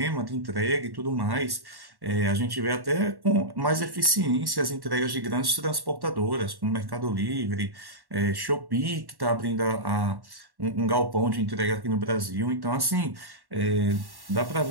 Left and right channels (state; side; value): late; left; 1.1 ms